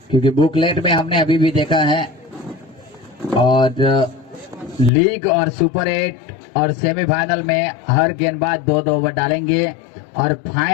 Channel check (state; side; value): drops out; right; at 4.9 s